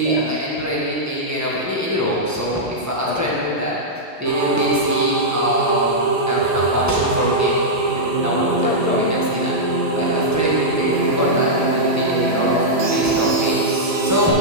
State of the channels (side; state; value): both; normal; correlation -0.07